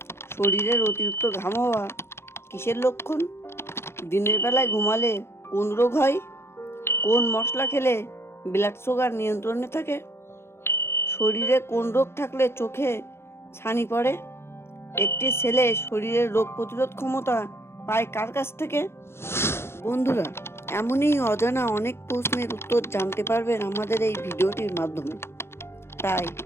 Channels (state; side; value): late; right; 0.12 ms